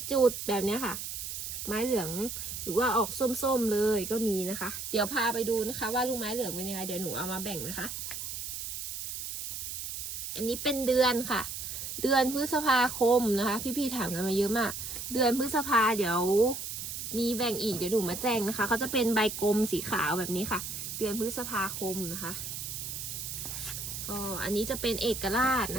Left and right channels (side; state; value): right; noise; hiss, 6 dB below the sound